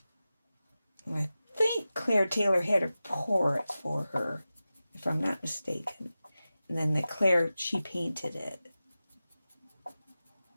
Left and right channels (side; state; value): both; inverted; correlation -0.95